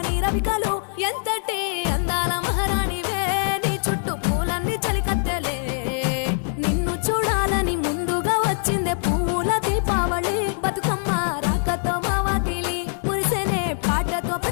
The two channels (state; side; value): silent; right; 63 dB below the other